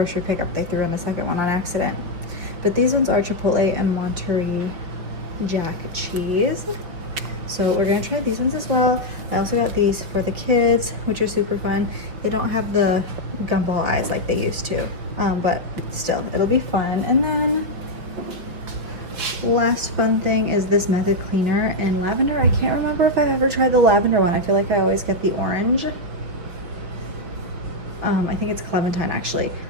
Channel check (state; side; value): late; left; 5.6 ms